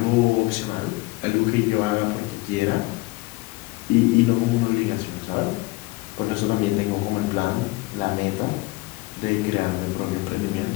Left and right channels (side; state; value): right; quieter; 22.2 dB